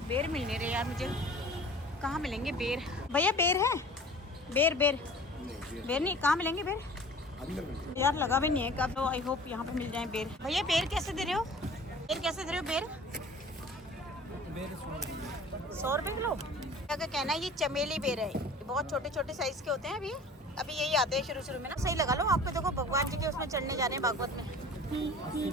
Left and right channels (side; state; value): both; normal; correlation 0.44